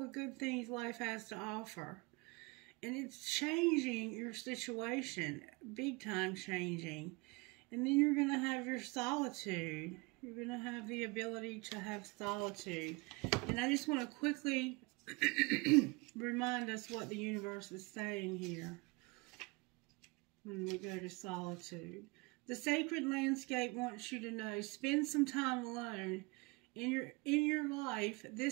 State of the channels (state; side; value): quieter; left; 26.3 dB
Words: good things life has to offer. And it's changing your situation, big time changing. And then you're going to have your solitude. You're going to have the ability to have solitude. And I just want to quickly remind us what the universe is saying here when we go to solitude. The sacred landscape wants you to know, spend some time alone. In your life,